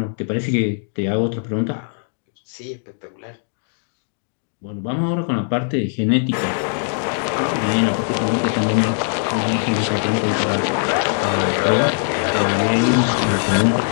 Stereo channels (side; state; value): right; silent; digital silence